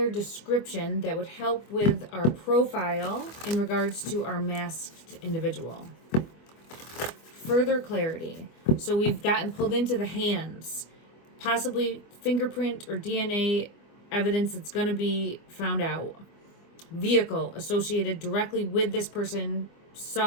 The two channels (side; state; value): right; late; 25 ms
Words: description that would help with our profile in regards to our masked individual. Further clarity. So we've gotten pulled into the hands, possibly fingerprint or DNA evidence that's going to be found out. Vehicle associated directly with this person